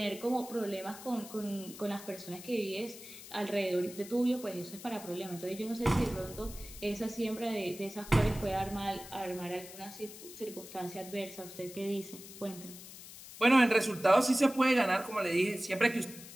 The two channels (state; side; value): noise; left; hiss, 15 dB below the sound